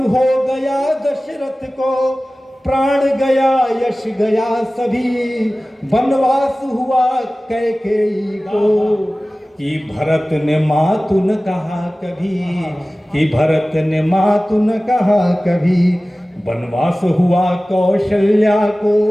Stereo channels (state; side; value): normal; both; correlation 0.97